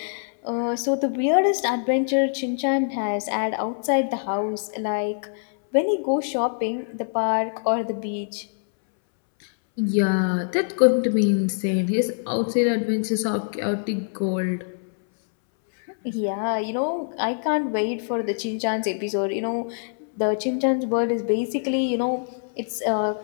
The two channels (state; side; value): silent; right; 62 dB below the other